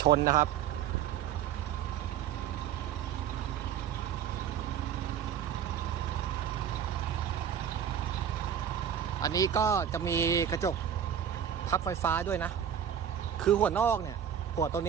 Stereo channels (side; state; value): left; quieter; 8.9 dB